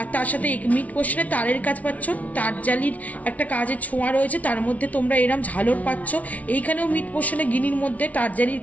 তার সাথে মিড পোর্শনে তারের কাজ পাচ্ছ, তারজালির একটা কাজের ছোঁয়া রয়েছে, তার মধ্যে তোমরা এরম ঝালর পাচ্ছ। এইখানেও মিড পোর্শনে গিনির মধ্যে তারজালির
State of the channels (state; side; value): late; right; 0.069 ms